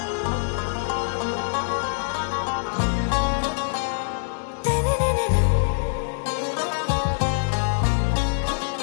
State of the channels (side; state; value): right; silent; digital silence